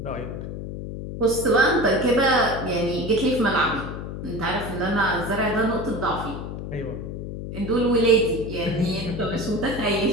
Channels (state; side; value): noise; left; hum, 7 dB below the sound